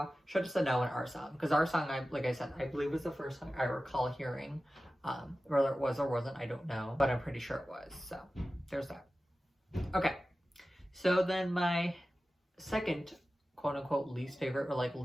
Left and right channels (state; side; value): normal; both; correlation 0.95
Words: Should Have Said No, and Our Song, because Our Song, like I said, I believe was the first song I recall hearing. Whether it was or wasn't, I don't know, but I'm pretty sure it was. So there's that. Okay, so then my second quote unquote least favorite, or like